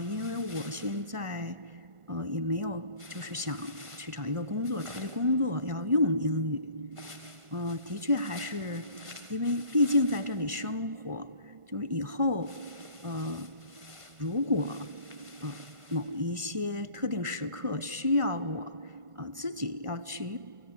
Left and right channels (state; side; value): late; left; 1.5 ms